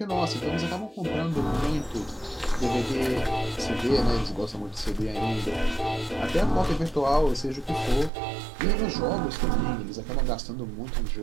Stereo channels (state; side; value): drops out; left; at 8.1 s